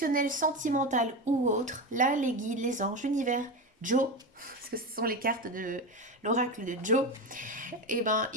sentimental ou autre, là les guides, les anges, l'univers, Joe, parce que ce sont les cartes de l'oracle de Joe, et ben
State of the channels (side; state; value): both; normal; correlation 0.20